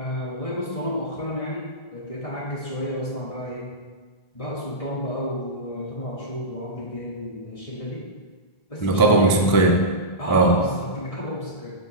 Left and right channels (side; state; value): right; late; 1.0 ms